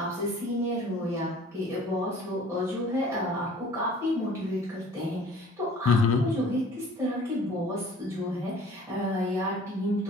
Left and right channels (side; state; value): both; normal; correlation 0.49